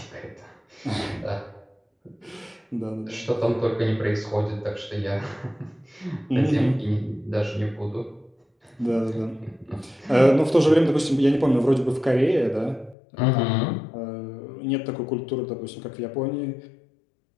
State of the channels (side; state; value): right; drops out; at 13.0 s